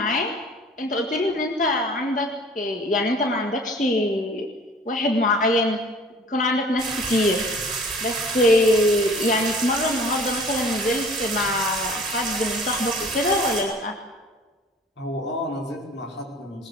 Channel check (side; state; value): both; normal; correlation 0.49